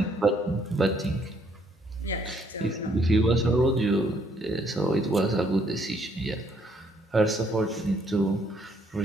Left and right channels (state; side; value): normal; both; correlation 0.67